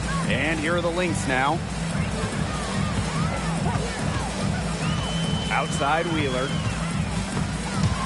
And here are the Lynx now. Outside Wheeler.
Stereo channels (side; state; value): both; identical; correlation 1.00